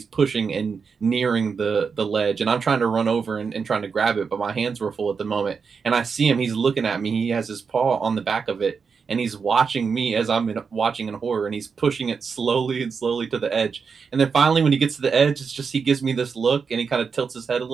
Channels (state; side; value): quieter; left; 5.6 dB